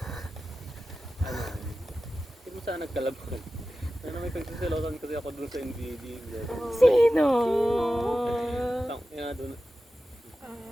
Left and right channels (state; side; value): normal; both; correlation 0.94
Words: hindi mo sana nagkalabag. May pagsiselosan kasi ako doon sa NBD. Sino? Doon.